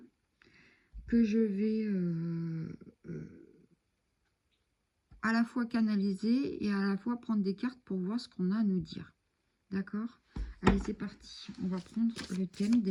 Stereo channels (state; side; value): identical; both; correlation 1.00